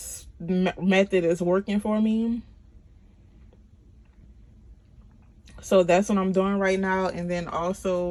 method is working for me. So that's what I'm doing right now. And then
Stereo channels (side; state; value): both; identical; correlation 1.00